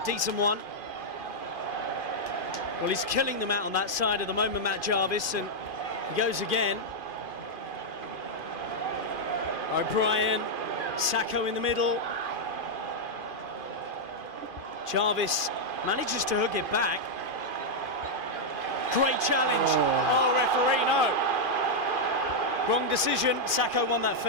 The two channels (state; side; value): late; left; 2.5 ms